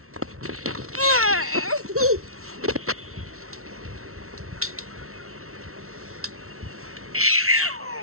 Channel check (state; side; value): late; left; 0.63 ms